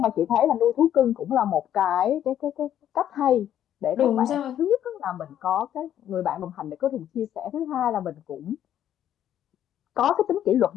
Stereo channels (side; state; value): right; quieter; 10.8 dB